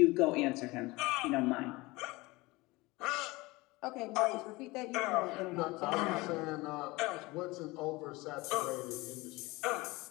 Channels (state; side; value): quieter; right; 22.2 dB